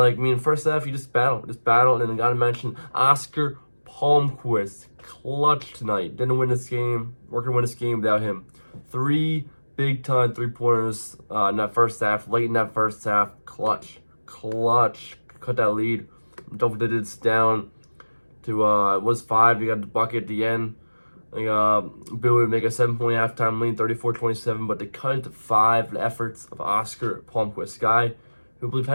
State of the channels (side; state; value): both; inverted; correlation -1.00